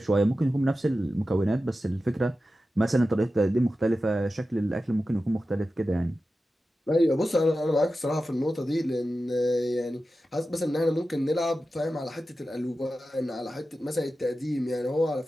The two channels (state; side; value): normal; both; correlation 0.93